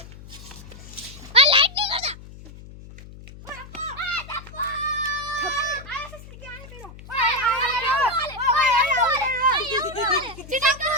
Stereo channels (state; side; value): noise; left; hum, 17 dB below the sound